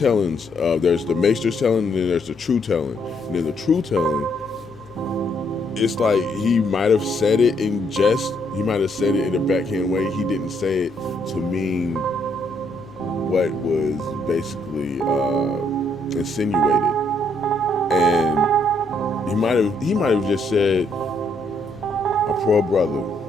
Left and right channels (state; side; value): normal; both; correlation 0.72